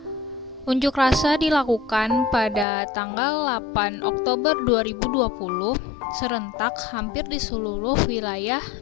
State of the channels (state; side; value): drops out; right; at 2.7 s